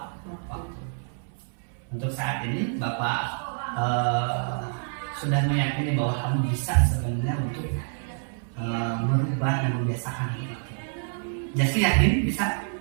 Untuk saat ini Bapak sudah meyakini bahwa kamu bisa sebenarnya untuk merubah dan membiasakan itu. Jasti yakin bisa?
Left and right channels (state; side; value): silent; left; 58 dB below the other